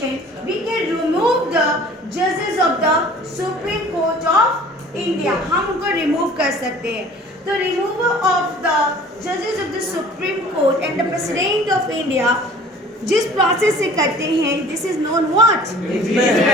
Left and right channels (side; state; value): both; normal; correlation 0.48